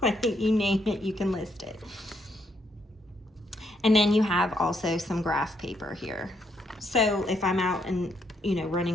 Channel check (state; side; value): normal; both; correlation 0.75